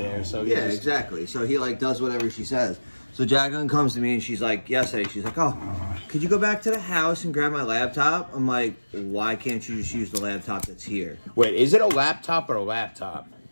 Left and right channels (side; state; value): both; inverted; correlation -1.00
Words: So yeah, exactly. So he like does whatever she says. So Jacqueline comes to me and she's like, yesterday, she's like, oh, could you go back to the house and grab my laptop? I'm like, why can't you just use the laptop that's here? Wait, is it a laptop or a laptop?